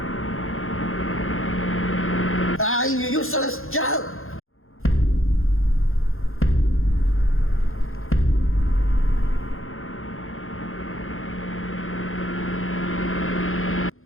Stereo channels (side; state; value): right; late; 0.61 ms